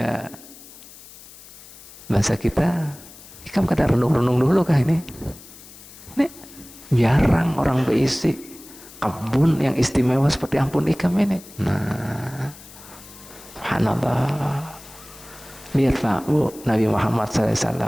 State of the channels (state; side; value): noise; left; hiss, 19 dB below the sound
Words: Bahasa kita, ikam kada renung-renung dulu kah ini? Ini jarang orang berisi kebun yang istimewa seperti ampun ikam ini. Nah, subhanallah. Lihat Pak Bu, Nabi Muhammad